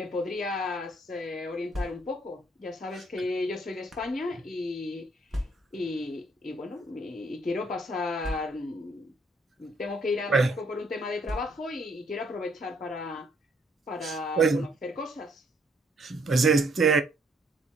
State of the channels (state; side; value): normal; both; correlation 0.66